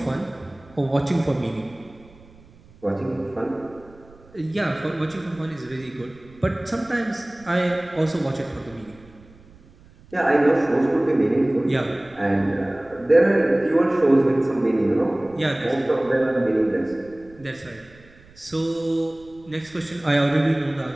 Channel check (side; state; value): right; noise; rumble, 25 dB below the sound